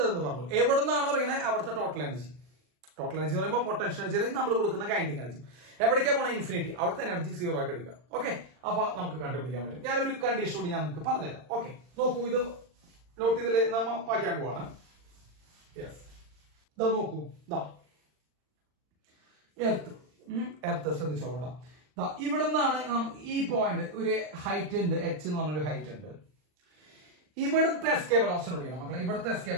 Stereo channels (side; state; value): left; late; 40 ms